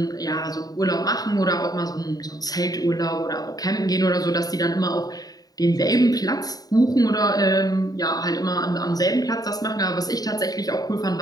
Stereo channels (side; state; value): right; late; 0.18 ms